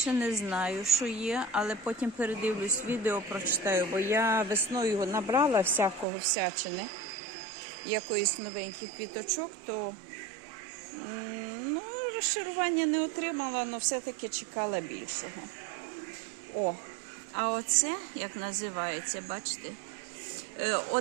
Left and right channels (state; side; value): drops out; left; at 6.1 s